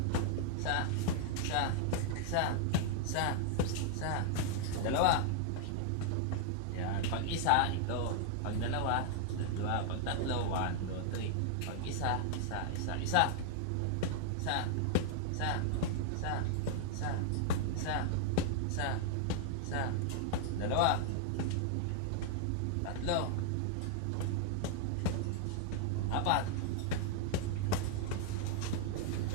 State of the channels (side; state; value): both; different; correlation -0.01